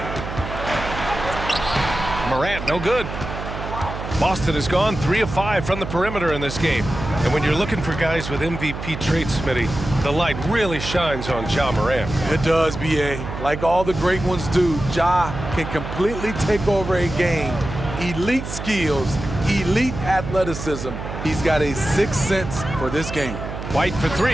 Morant, no good. Boston has gone 3 of 5 from the perimeter in this game. And when you're looking for guys with MVP traits, Smitty, the light really shines on Ja Morant. It does, B.A. Like all the great ones do, Ja can completely take over a game. Elite skills, elite athleticism. He's got a sixth sense for this game. White for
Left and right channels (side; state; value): right; noise; hum, 7 dB below the sound